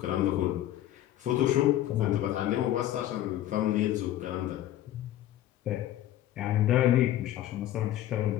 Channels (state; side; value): quieter; right; 13.2 dB